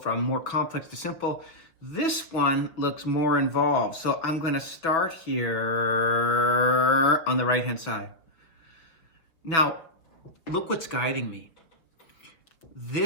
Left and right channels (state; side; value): late; right; 5.9 ms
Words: more complex to simple. This one looks more involved. So I'm going to start here on the right-hand side. Now, look what's guiding me.